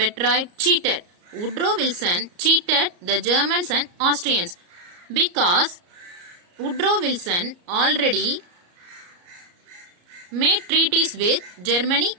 Cheated. Woodrow Wilson cheated the Germans and Austrians because Woodrow Wilson already made treaties with Germany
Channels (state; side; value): late; left; 34 ms